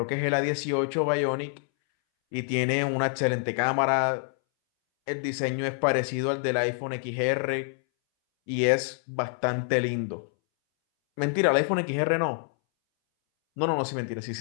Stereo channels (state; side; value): silent; right; 60 dB below the other